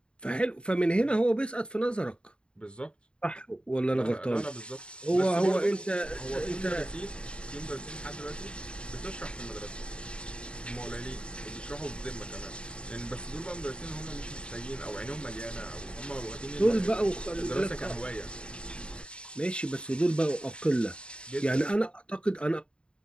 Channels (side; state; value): right; late; 0.054 ms